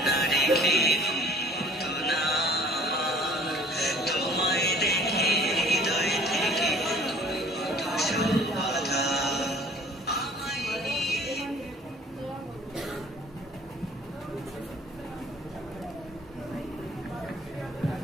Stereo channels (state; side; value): normal; both; correlation 0.51